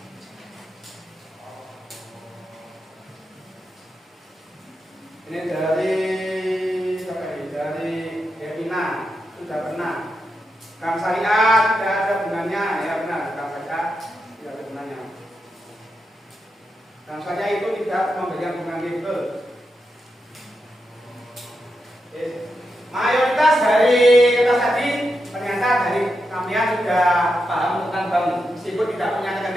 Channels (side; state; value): both; normal; correlation 0.86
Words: Ini dari Devina, sudah pernah. Bank syariah tidak ada gunanya, ya benar. Bank syariah tidak ada gunanya. Bank syariah itu tidak memberikan bunga gitu. Mayoritas dari kertas tadi ternyata dari kalian sudah paham tentang bank, meskipun tidak punya